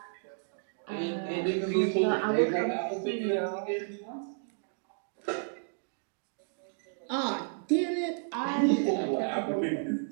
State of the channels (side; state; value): left; silent; digital silence